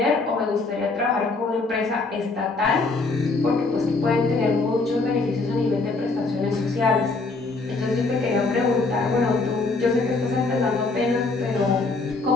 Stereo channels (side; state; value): right; quieter; 3.6 dB